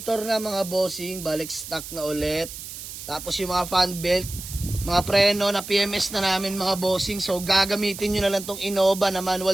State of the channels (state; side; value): noise; right; hiss, 11 dB below the sound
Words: na mga bossing. Balik stock na ulit. Tapos yung mga fan belt, mga preno na PMS na namin mga bossing. So, gagamitin nyo na lang tong Innova na